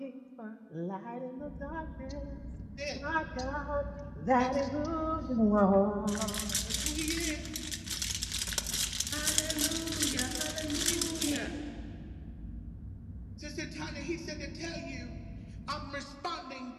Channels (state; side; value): identical; both; correlation 1.00